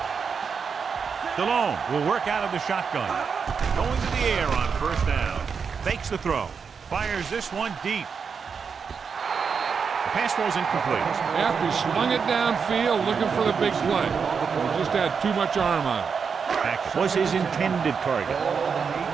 Delone will work out of the shotgun. Going to the air on first down. Fakes the throw. Fires this one deep. The pass was incomplete. After he swung it downfield looking for the big play. He just had too much arm on it. That was his intended target. There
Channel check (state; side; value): quieter; left; 6.0 dB